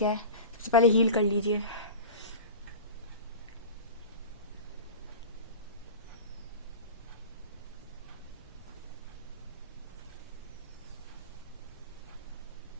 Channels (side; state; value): both; inverted; correlation -0.32